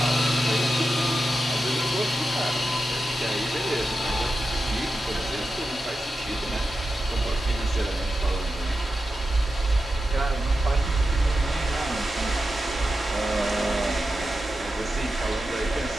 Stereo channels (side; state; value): both; normal; correlation 0.90